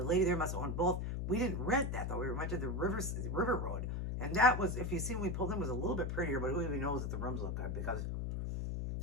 lady there must have owned both. We didn't rent that, though. We went to the River Road. And that was, if you see when we pulled in, was a little bit prettier, but who even knows that the rooms look good because,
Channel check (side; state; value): left; noise; hum, 2 dB below the sound